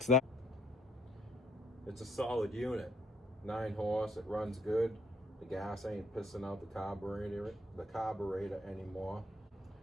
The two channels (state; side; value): normal; both; correlation 0.67